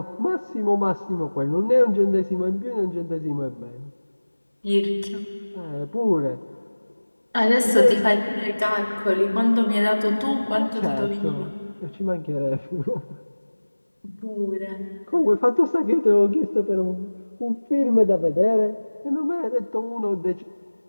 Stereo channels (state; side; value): inverted; both; correlation -1.00